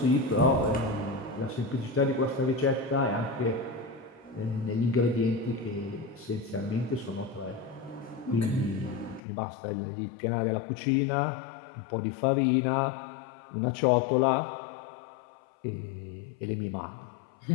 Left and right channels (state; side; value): drops out; right; at 9.2 s